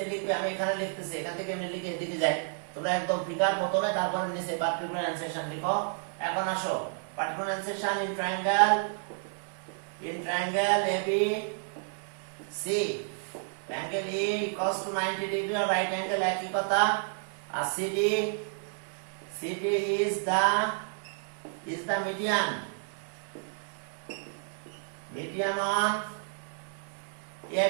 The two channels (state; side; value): silent; left; 57 dB below the other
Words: লিখবে আমি এখানে লিখতেছি এখান থেকে আমি লিখে এদিকে যাই তোমরা একদম ফিগার প্রথমে তারপরে নিচে পার্টিকুলার এনসেশন লিখো এখন আসো particular enunciation in triangle AB C angle E equals to 90 degree or right angle একই কথা আর CD is the median on